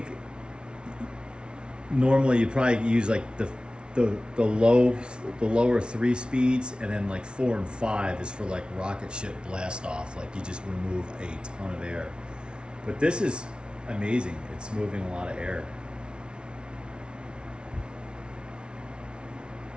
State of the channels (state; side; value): late; left; 0.056 ms